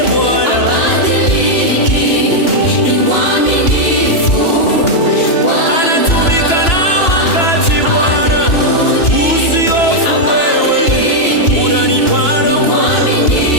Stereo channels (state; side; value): late; right; 2.9 ms